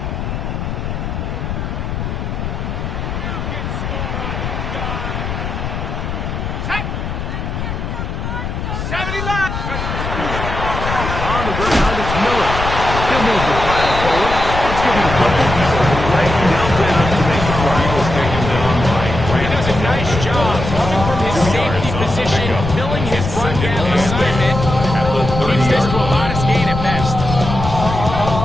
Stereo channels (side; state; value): left; noise; rumble, 4 dB below the sound